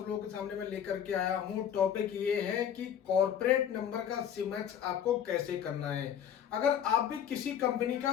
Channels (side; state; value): right; quieter; 9.2 dB